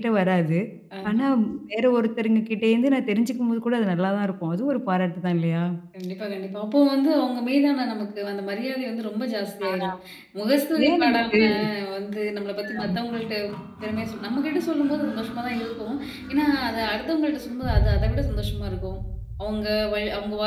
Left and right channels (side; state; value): both; identical; correlation 1.00